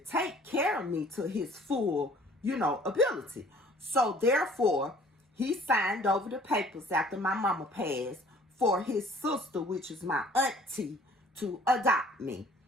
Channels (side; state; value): both; normal; correlation 0.54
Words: care of me to his full, ability. So therefore, he signed over the papers after my mama passed for his sister, which is my auntie, to adopt me.